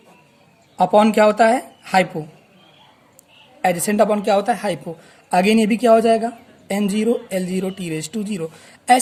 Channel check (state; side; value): identical; both; correlation 1.00